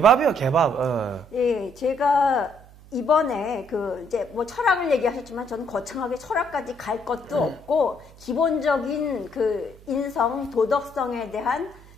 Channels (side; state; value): right; noise; hum, 22 dB below the sound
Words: 개밥. 예, 제가 이번에 이제 철학을 얘기하셨지만 저는 거창하게 철학까지 갈 것도 없고, 기본적인 인성, 도덕성에 대한